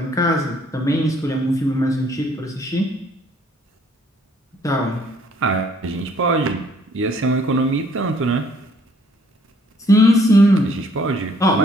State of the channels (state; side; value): normal; both; correlation 0.63